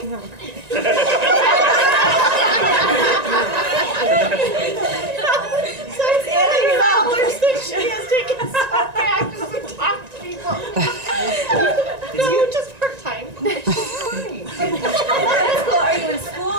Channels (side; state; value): left; late; 1.9 ms